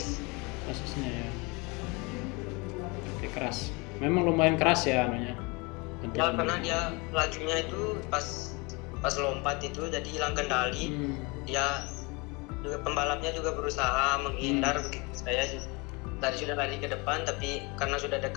Sasisnya ya. Oke, keras. Memang lumayan keras ya anunya. Ya, karena dia lajunya itu pas lompat itu jadi hilang kendali. Dia juga, pembalapnya juga berusaha menghindar begitu. Saya tadi sudah lari ke depan tapi karena sudah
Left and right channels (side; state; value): right; quieter; 27.9 dB